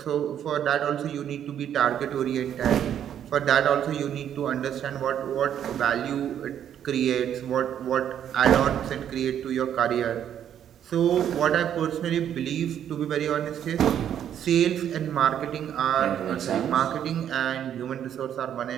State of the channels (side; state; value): left; quieter; 9.8 dB